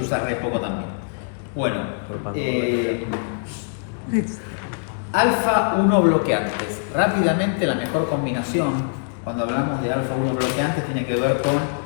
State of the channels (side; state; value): right; silent; digital silence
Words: re poco también. Bueno, alfa-1 bloqueantes. Rápidamente, la mejor combinación cuando hablamos de alfa-1 bloqueantes tiene que ver con